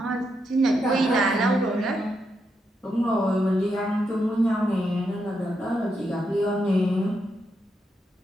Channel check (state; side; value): normal; both; correlation 0.82